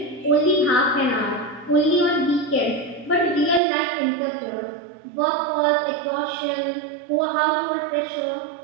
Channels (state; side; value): drops out; left; at 3.6 s